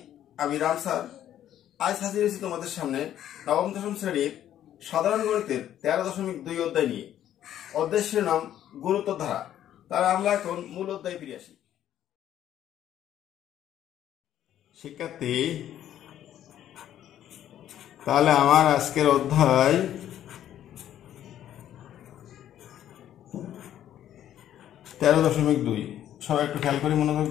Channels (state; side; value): quieter; right; 11.3 dB